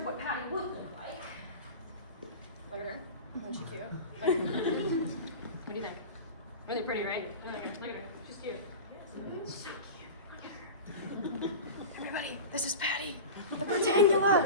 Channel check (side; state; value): both; inverted; correlation -0.30